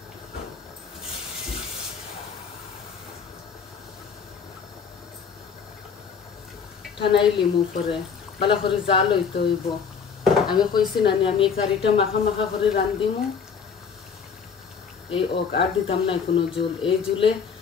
ঠানাই লিমু করে ভালো করে জাল হইতে হইব আমি কইছি না আমি এই কারিটা মাখা মাখা করে রান্ধিমু এই আর দিতাম না কোনো জল এই জুলে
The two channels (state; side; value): quieter; right; 6.3 dB